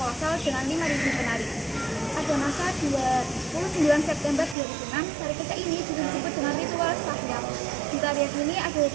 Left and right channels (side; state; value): left; drops out; at 4.5 s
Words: dengan 5.000 penari. Pada masa 29 September 2006, tari kecak ini juga disebut dengan ritual sahyam. Di tarian ini ada